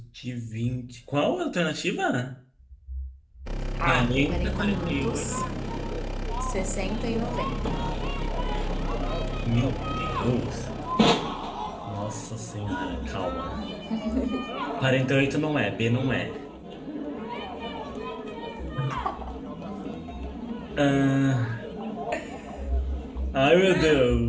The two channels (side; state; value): both; identical; correlation 1.00